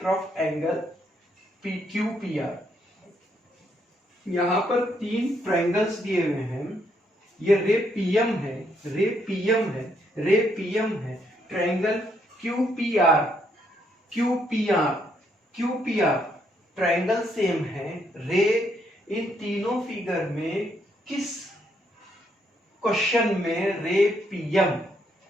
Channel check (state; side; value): normal; both; correlation 0.74